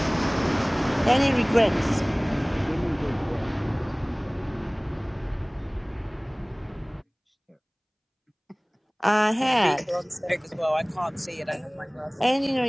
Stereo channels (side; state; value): both; identical; correlation 1.00